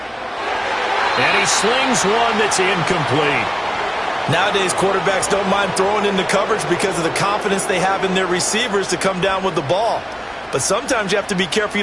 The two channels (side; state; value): both; identical; correlation 1.00